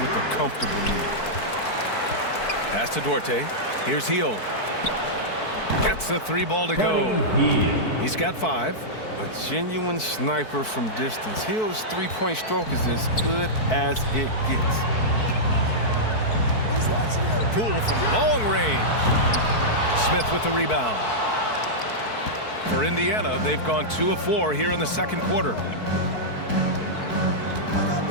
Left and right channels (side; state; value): right; late; 4.6 ms